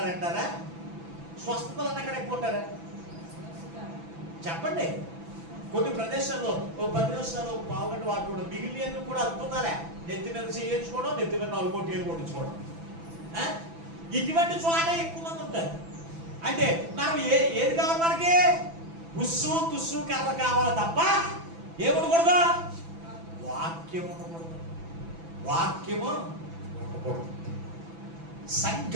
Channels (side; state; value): left; late; 6.0 ms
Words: స్వస్థతలు అన్న కాడ ఎక్కువ ఉంటారా? చెప్పండి. కొన్ని ప్రదేశాల్లో 10 నిమిషాలు పావుగంట వాటి కూడా మిగిలిన కూడా అద్భుతాలే. నెత్తి మీద చేయించుకోవడం, నెత్తి మీద 4 కోట్లు కొట్టించుకోవడం. ఇటువంటి చోట ఎక్కువ మంది ఉంటారు. అంటే మనం ఏది కావాలి? మనకి ఉస్సు తుస్సు కర్ర కావాలి తప్ప ఏముండకూడదు? వాక్యం ఉండకూడదు.